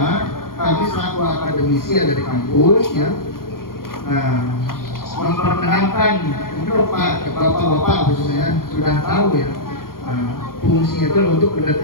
kami selaku akademisi dari kampus ya, memperkenalkan untuk bapak-bapak khususnya sudah tahu ya, fungsinya itu untuk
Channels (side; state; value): right; late; 0.92 ms